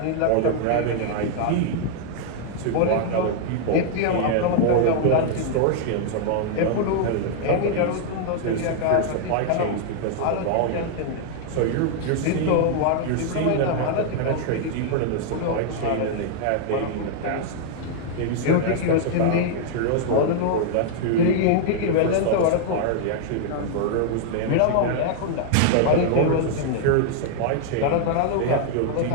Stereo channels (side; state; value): both; different; correlation 0.00